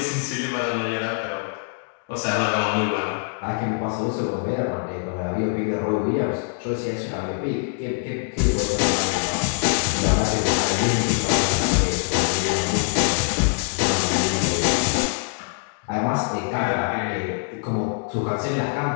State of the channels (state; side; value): silent; right; 63 dB below the other